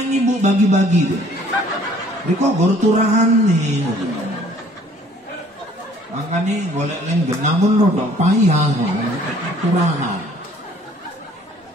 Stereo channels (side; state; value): both; normal; correlation 0.57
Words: ini bu bagi-bagi tuh. Ini kok baru turahan nih. Makanya boleh lenggen, namun rodok payah turahan.